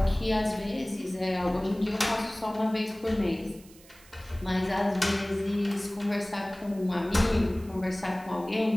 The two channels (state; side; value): noise; right; hiss, 24 dB below the sound